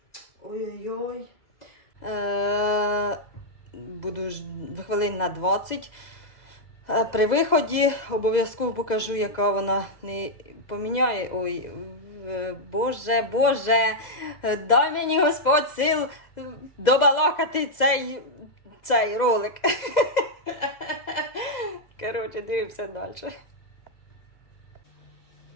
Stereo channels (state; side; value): late; right; 2.0 ms